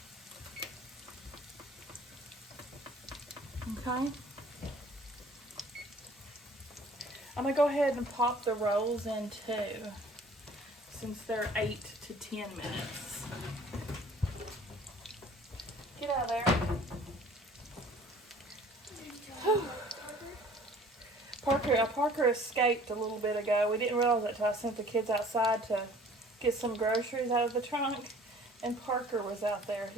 Okay. I'm gonna go ahead and pop the rolls in too, since they're 8 to 10 minutes. Get out of there. Parker escaped a little bit ago. We didn't realize it until I sent the kids outside to get some groceries out of the trunk, and Parker was out there.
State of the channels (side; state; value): both; normal; correlation 0.51